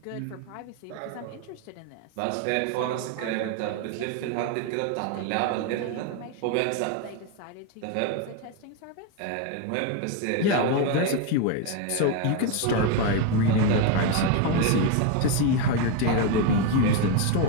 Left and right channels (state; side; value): different; both; correlation 0.02